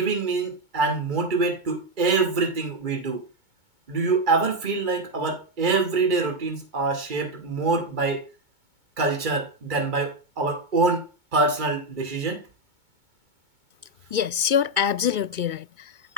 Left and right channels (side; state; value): left; late; 2.2 ms